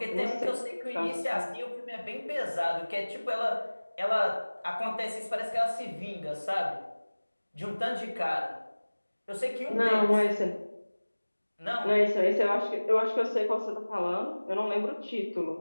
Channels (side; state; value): both; inverted; correlation -1.00